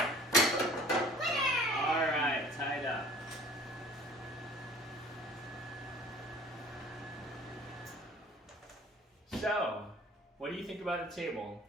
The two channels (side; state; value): both; normal; correlation 0.48